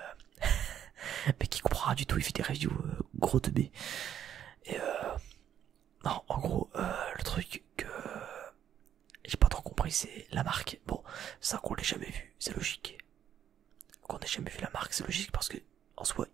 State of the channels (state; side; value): quieter; left; 9.9 dB